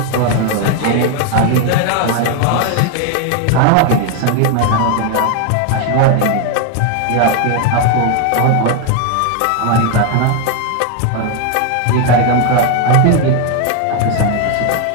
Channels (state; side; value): different; both; correlation 0.01